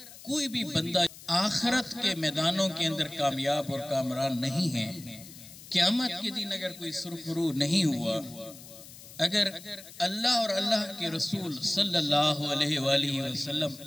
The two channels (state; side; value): noise; left; hiss, 17 dB below the sound